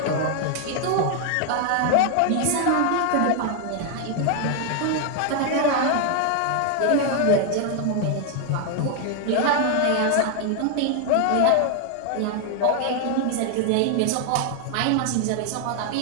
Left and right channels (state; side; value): different; both; correlation 0.00